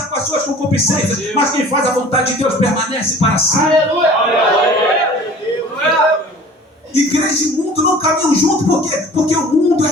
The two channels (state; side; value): normal; both; correlation 0.45